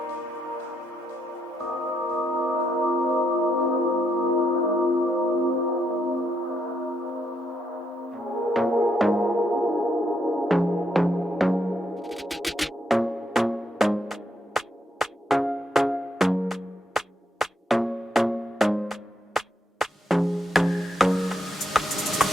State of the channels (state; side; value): normal; both; correlation 0.78